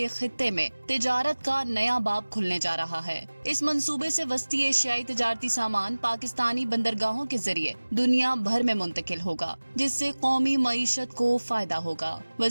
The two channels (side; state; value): both; inverted; correlation -1.00